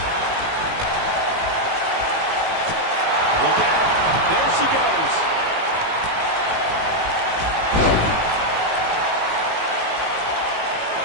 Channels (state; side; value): late; left; 18 ms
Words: Look out. There she goes.